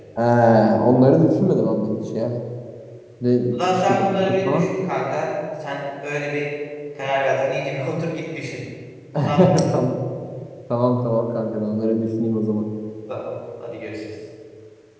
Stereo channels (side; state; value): both; identical; correlation 1.00